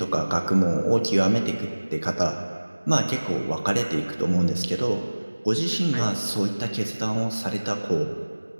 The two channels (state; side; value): inverted; both; correlation -1.00